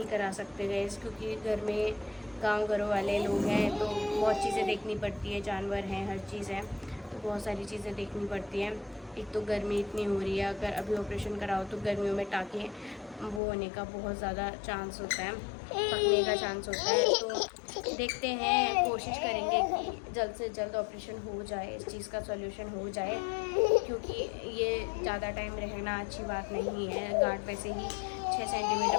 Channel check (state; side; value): drops out; right; at 13.4 s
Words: करा सकते गैस, क्योंकि घर में गांव घरों वाले लोग हैं तो बहुत चीज़ें देखनी पड़ती है, जानवर हैं, हर चीज़ है, तो बहुत सारी चीज़ें देखनी पड़ती हैं। एक तो गर्मी इतनी हो रही है, अगर अभी ऑपरेशन कराओ तो गर्मियों में टाँके वो होने का बहुत ज़्यादा चांस होता है, पकने का चांस होता है। तो देखते हैं, कोशिश करेंगे कि जल्द से जल्द ऑपरेशन हो जाए, इस चीज़ का सॉल्यूशन हो जाए, क्योंकि ये ज़्यादा टाइम रहना अच्छी बात नहीं है। गांठ वैसे ही 6 सेंटीमीटर